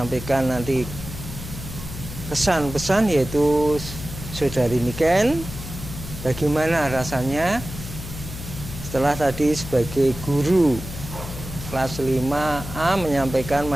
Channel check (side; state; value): left; noise; hum, 10 dB below the sound